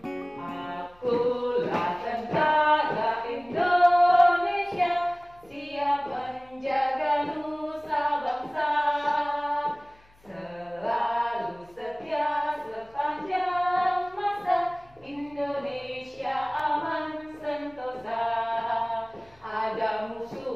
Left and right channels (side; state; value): left; noise; hum, 30 dB below the sound